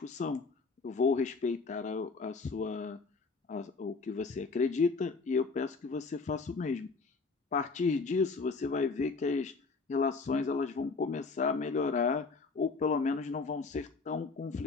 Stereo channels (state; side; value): quieter; right; 4.3 dB